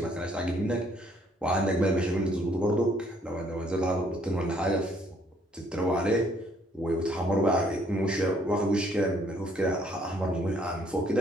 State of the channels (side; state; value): both; normal; correlation 0.65